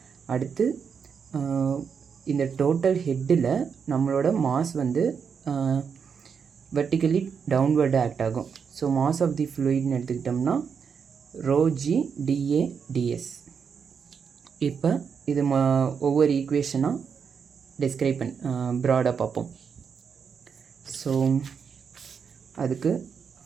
அடுத்து இந்த டோட்டல் ஹெட்டில் நம்மளோட மாஸ் வந்து வெர்டிக்கலி டவுன்வர்டு ஆக்ட் ஆகும். ஸோ மாஸ் ஆஃப் தி ஃப்ளூயிட்னு எடுத்துக்கிட்டோம்னா ரோஜி டிஏ டிஎஸ். இப்போ இது ஒவ்வொரு ஈக்குவேஷனாக டிஸ்கிரைப் ப்ராடாக பார்ப்போம். ஸோ அதுக்கு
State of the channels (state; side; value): quieter; left; 6.5 dB